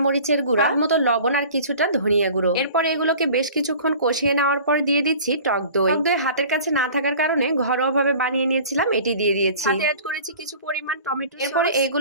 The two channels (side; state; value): both; inverted; correlation -0.44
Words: মরিচের গুঁড়া, মতো লবণ আর কিছুটা ধনিয়া গুঁড়ো। এরপর এগুলোকে বেশ কিছুক্ষণ কষিয়ে নেওয়ার পর দিয়ে দিচ্ছি টক দই। টক দই হাতের কাছে না থাকার কারণে ঘরোয়াভাবে বানিয়ে নিয়েছিলাম, এটি দিয়ে দিয়েছি। সাথে অ্যাড করেছি কিছু পরিমাণ টমেটো। এরপরে